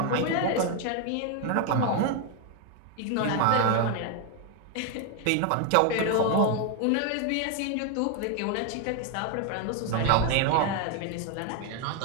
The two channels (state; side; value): different; both; correlation 0.01